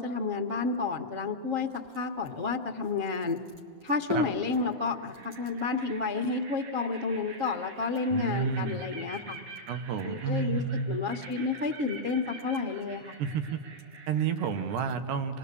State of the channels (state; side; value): late; left; 10 ms